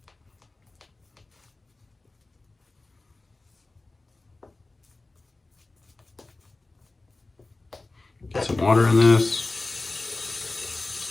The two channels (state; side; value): quieter; right; 3.2 dB